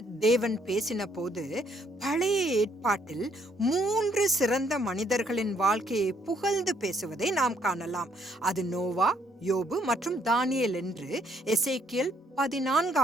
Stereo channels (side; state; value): both; normal; correlation 0.69